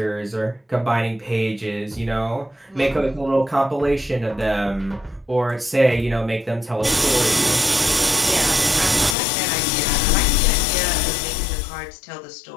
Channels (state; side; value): drops out; right; at 9.2 s